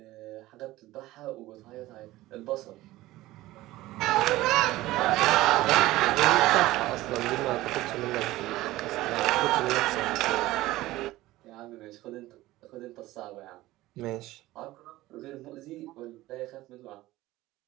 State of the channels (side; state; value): left; quieter; 17.2 dB